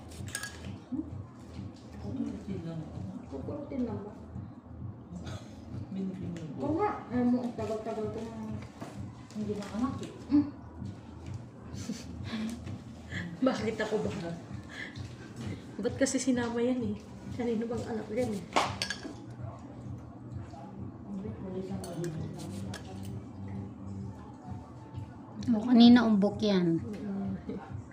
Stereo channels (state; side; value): identical; both; correlation 1.00